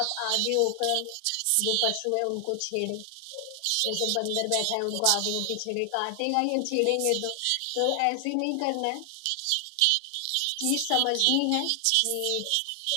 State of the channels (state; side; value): different; both; correlation 0.00